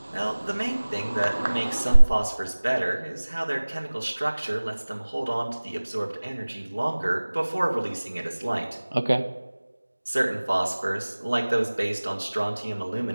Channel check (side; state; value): both; inverted; correlation -1.00